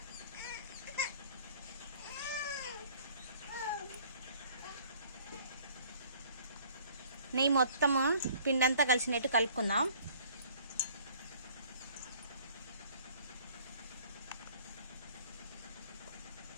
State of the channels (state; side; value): inverted; both; correlation -0.55